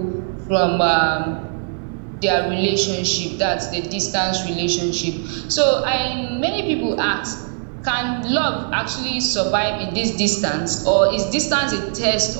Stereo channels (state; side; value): silent; left; 64 dB below the other